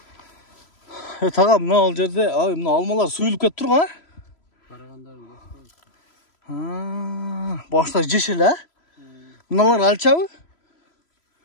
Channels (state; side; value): late; right; 3.0 ms